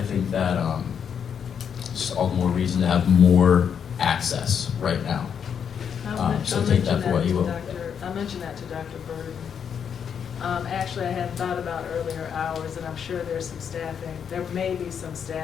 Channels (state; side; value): quieter; right; 7.6 dB